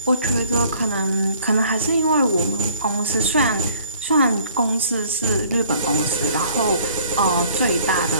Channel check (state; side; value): inverted; both; correlation -0.56